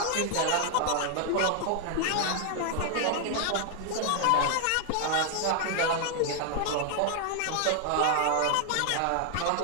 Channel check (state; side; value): different; both; correlation 0.00